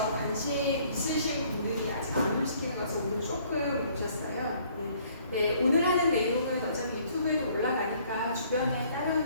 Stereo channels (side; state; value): both; inverted; correlation -0.60